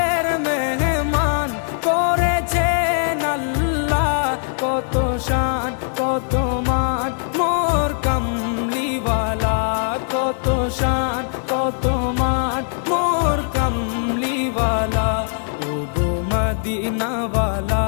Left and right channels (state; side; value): silent; right; 58 dB below the other